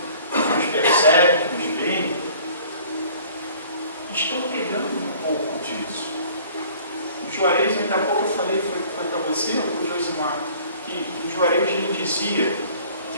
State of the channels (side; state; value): both; inverted; correlation -0.51